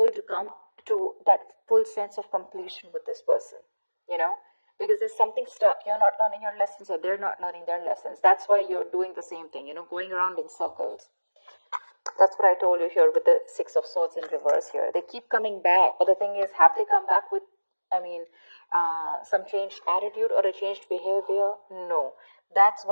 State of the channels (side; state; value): both; inverted; correlation -1.00